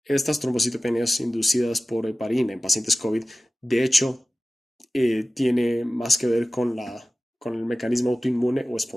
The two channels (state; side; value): normal; both; correlation 0.95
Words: estas trombocitopenias inducidas por heparina en pacientes COVID, de hecho, tiene más que ver con el mecanismo autoinmune o